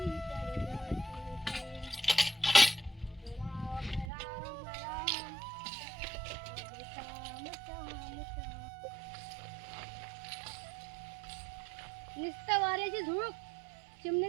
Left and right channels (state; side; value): drops out; left; at 4.0 s